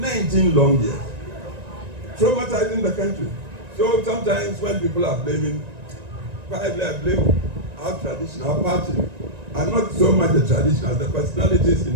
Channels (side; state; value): left; late; 1.9 ms